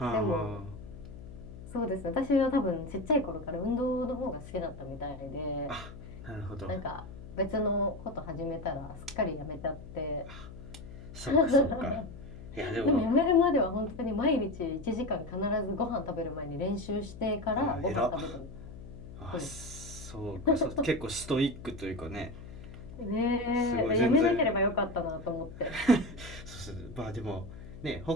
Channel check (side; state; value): left; noise; hum, 14 dB below the sound